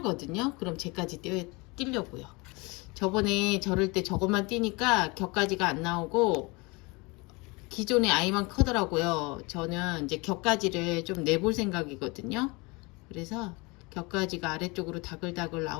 그럼 쟤까지 띄려고요. 저번에 저럴 때 저것만 띄니까 격가지가 안 나오고 기존의 아이만 크더라고요. 저는 이제 격가지를 좀 내볼 생각이거든요. 그래서 격가지가 아래쪽으로 다글다글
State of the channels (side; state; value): right; quieter; 26.6 dB